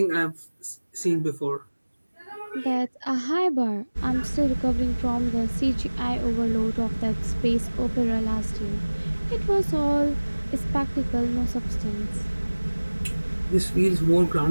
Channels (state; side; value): inverted; both; correlation -1.00